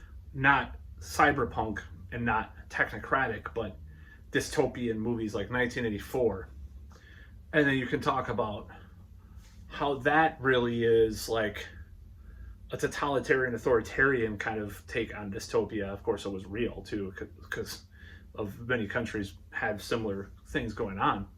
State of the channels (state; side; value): identical; both; correlation 1.00